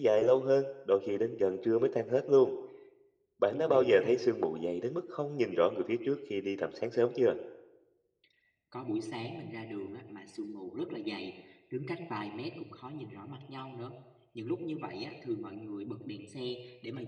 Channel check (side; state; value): both; identical; correlation 1.00